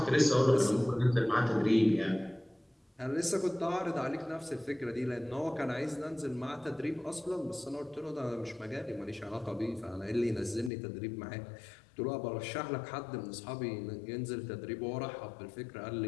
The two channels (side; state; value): right; drops out; at 10.7 s